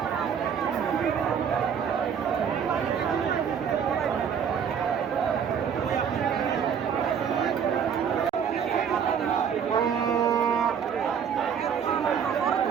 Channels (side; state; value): left; quieter; 7.6 dB